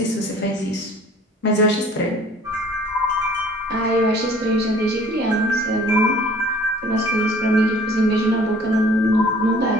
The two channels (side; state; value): both; normal; correlation 0.52